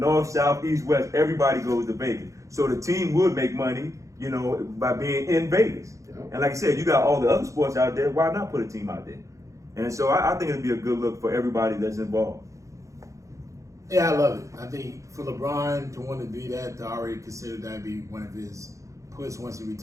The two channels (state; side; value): late; left; 0.15 ms